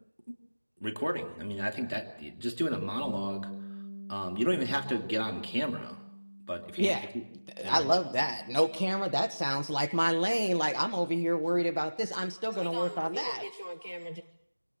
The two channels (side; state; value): both; inverted; correlation -1.00